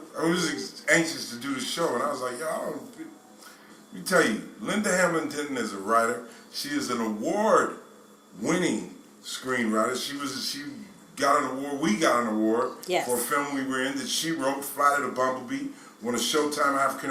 was anxious to do the show, and I was like, let me tell you, Linda Hamblin Denton is a writer. She is an award-winning screenwriter. She got an award. We got an award for a film we were in that she wrote, Flight of the Bumblebee, won a Showtime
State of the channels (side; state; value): both; identical; correlation 1.00